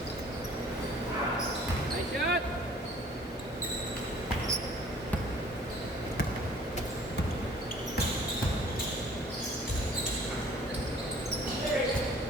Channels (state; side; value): normal; both; correlation 0.53